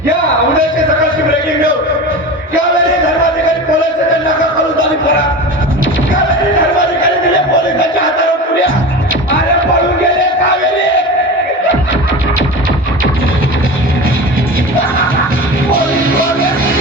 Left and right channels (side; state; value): both; normal; correlation 0.30